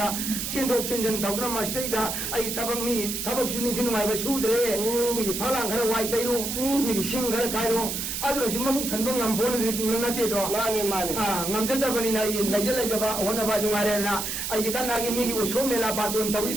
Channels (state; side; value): noise; right; hiss, 3 dB below the sound